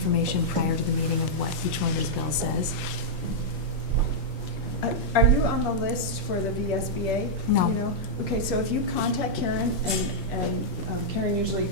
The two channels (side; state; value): both; normal; correlation -0.07